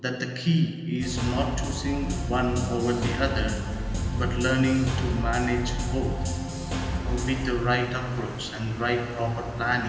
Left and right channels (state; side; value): identical; both; correlation 1.00